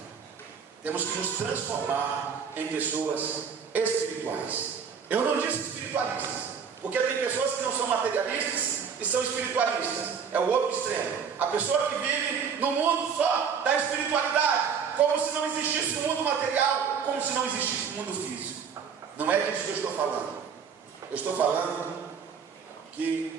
Temos que nos transformar em pessoas espirituais. Eu não disse espiritualistas, porque tem pessoas que não são materialistas e são espiritualistas. É o outro extremo. A pessoa que vive no mundo só da espiritualidade, como se não existisse o mundo material, como se não existisse o mundo físico. Não é disso que eu estou falando. Eu estou falando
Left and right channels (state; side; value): quieter; left; 6.6 dB